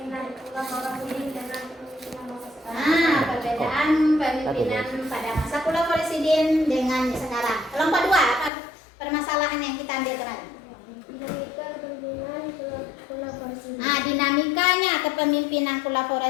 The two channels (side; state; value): right; drops out; at 8.5 s